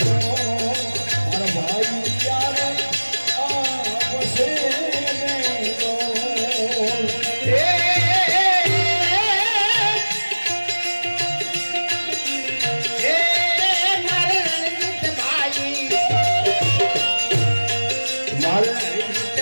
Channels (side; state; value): both; inverted; correlation -1.00